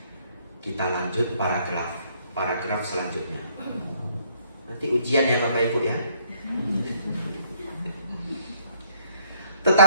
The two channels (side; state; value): both; inverted; correlation -0.66